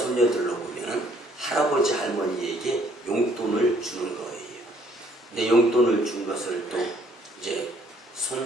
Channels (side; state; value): both; normal; correlation 0.63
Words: 보면은 할아버지, 할머니에게 용돈을 주는 거예요. 근데 용돈을 준 것을 또 이제